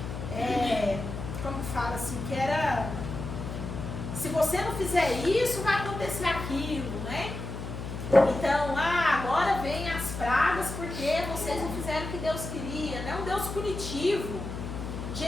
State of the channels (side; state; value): left; noise; hum, 7 dB below the sound